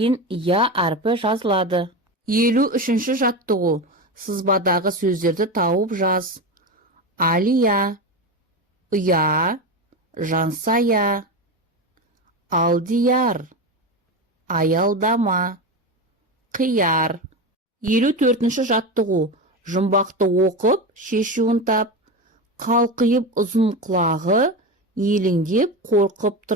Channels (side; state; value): both; normal; correlation 0.20